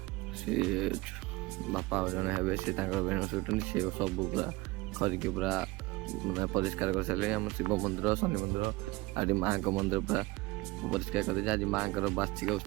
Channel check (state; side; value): quieter; left; 22.0 dB